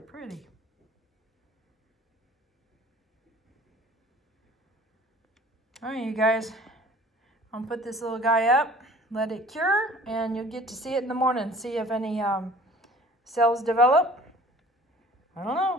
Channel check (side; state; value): both; normal; correlation 0.49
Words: All right, you guys, I'm gonna put this little guy up, let it cure, and you'll get to see it in the morning, see if any cells develop. I don't